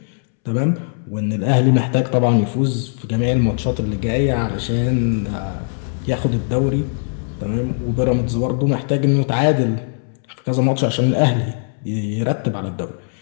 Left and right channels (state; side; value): silent; right; 66 dB below the other